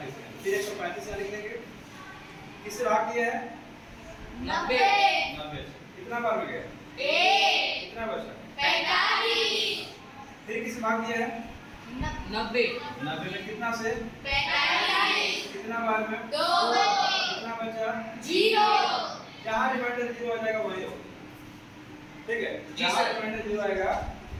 में, फिर 135 से लिख देंगे। किससे भाग दिया है 90। 90। कितना बार में गया कितना बचा 45। फिर किससे भाग दिया है 90 90 में, कितना से 45। कितना बार में 2। कितना बचा 0। जहाँ रिमाइंडर 0 आ जाएगा वही हो। ठीक है, जी जहाँ सर। रिमाइंडर 0 आएगा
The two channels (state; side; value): identical; both; correlation 1.00